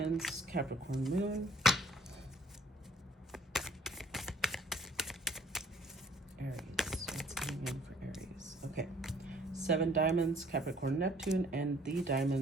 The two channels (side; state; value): both; normal; correlation 0.59